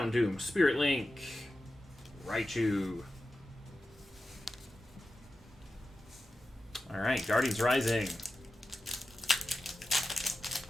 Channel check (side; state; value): both; normal; correlation 0.92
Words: Spirit Link, Raichu. Alright, Guardians Rising.